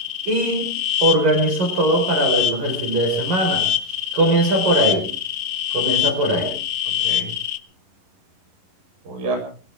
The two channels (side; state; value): left; late; 10 ms